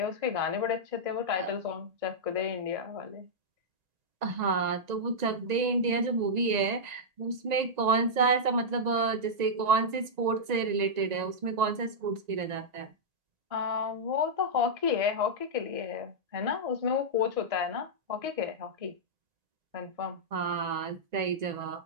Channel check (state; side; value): late; left; 1.9 ms